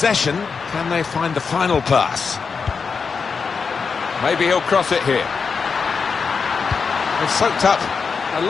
Can they find the final pass? Maybe he'll cross it here. They've soaked up a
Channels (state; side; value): quieter; right; 5.4 dB